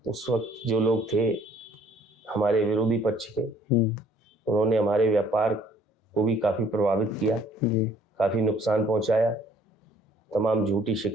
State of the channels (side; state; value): both; normal; correlation 0.59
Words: उस वक्त जो लोग थे हमारे विरोधी पक्ष के, उन्होंने हमारे व्यापार को भी काफ़ी प्रभावित किया, काफ़ी नुकसान पहुंचाया, तमाम झूठी